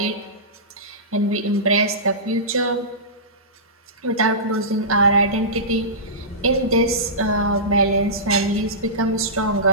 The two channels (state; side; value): normal; both; correlation -0.19